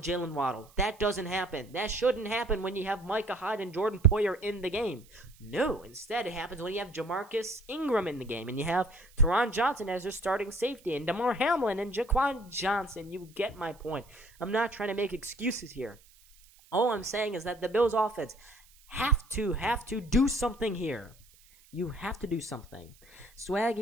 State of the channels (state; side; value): noise; right; hiss, 27 dB below the sound